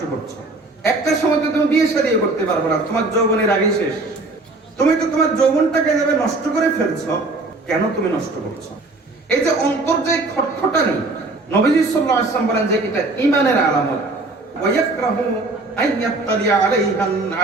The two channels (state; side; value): quieter; left; 3.2 dB